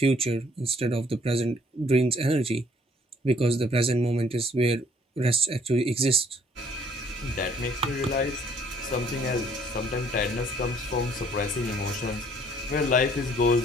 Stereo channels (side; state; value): both; normal; correlation 0.61